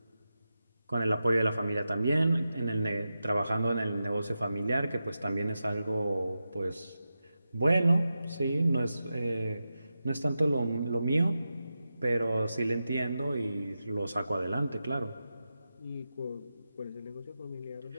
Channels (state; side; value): inverted; both; correlation -0.91